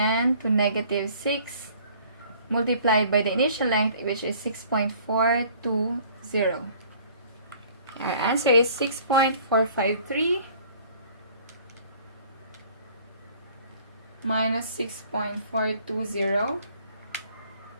to negative 6 multiplied by the initial length, which is 6.420. Our answer is 6.453 minus 6.420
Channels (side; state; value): both; inverted; correlation -0.54